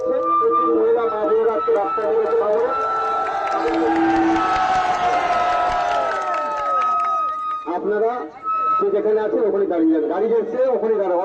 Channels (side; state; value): both; identical; correlation 1.00